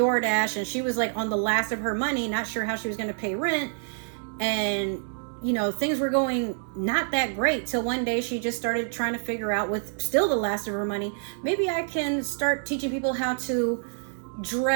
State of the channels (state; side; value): silent; left; digital silence